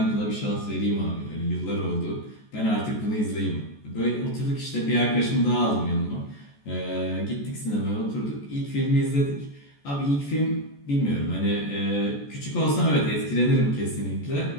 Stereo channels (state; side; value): late; right; 14 ms